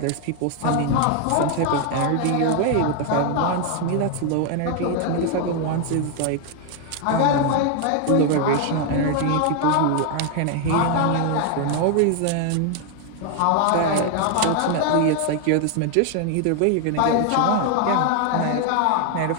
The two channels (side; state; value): both; different; correlation 0.00